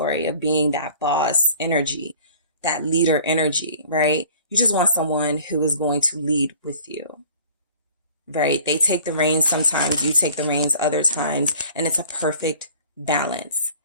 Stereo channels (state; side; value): inverted; both; correlation -0.48